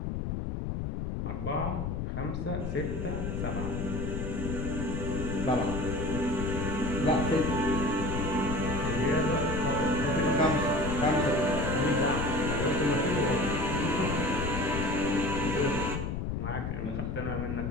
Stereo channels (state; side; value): noise; left; rumble, 2 dB below the sound